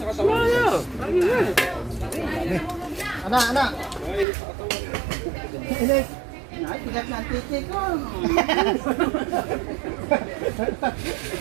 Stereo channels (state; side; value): drops out; left; at 4.2 s